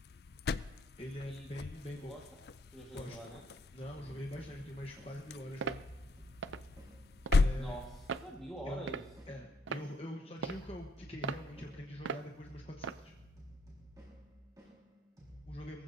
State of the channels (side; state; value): both; normal; correlation 0.72